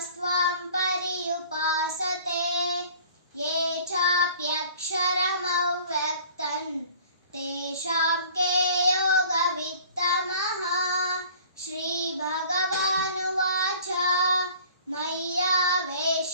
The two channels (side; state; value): both; inverted; correlation -0.49